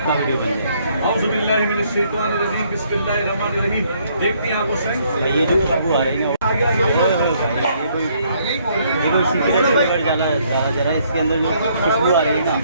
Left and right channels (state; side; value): inverted; both; correlation -0.67